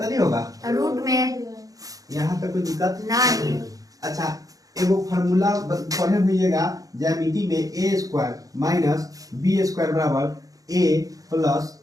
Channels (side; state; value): left; late; 0.17 ms